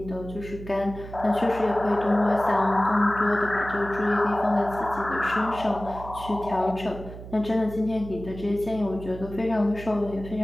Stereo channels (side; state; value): right; noise; hum, 13 dB below the sound